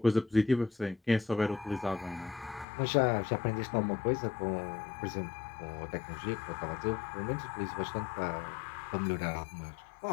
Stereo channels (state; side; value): drops out; right; at 2.7 s